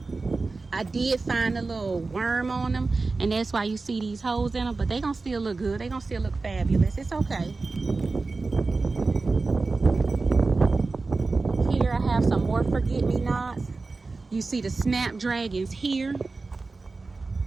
I did find a little worm on them, and that's why you see these holes in them, but they gonna still look good. They gonna still look fabulous. It's okay. Here I have some more forget-me-nots. You see the snapdragons here.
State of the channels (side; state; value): left; quieter; 3.8 dB